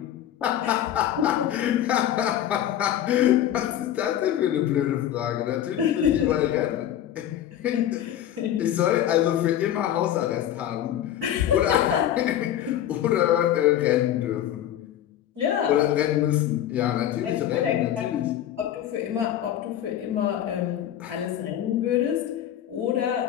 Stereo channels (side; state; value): right; quieter; 11.3 dB